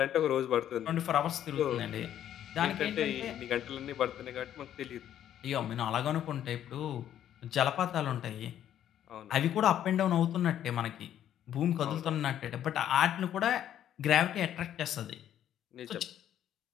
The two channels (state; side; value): quieter; right; 10.8 dB